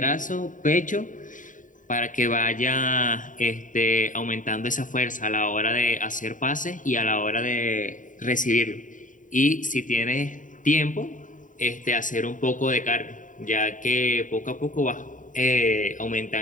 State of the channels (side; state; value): right; late; 0.38 ms